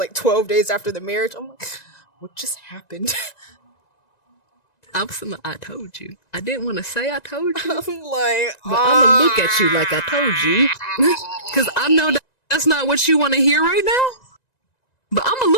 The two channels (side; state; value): right; late; 1.9 ms